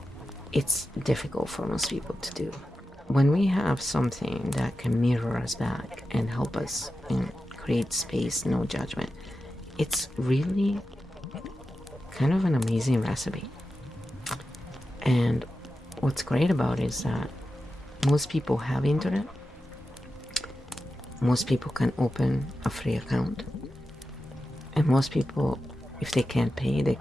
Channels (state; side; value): normal; both; correlation 0.91